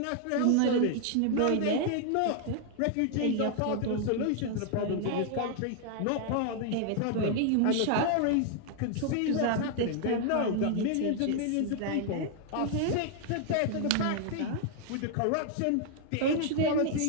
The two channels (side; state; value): both; different; correlation 0.00